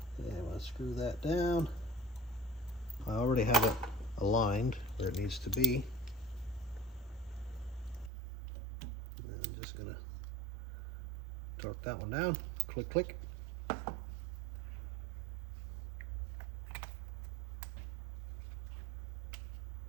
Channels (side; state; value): left; drops out; at 8.1 s